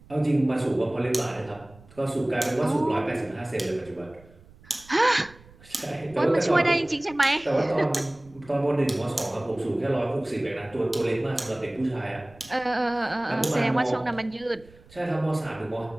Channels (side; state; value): right; noise; rumble, 24 dB below the sound